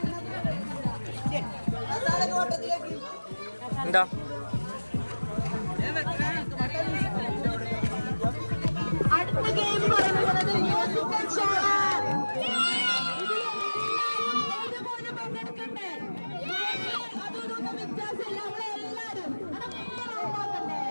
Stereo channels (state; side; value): inverted; both; correlation -1.00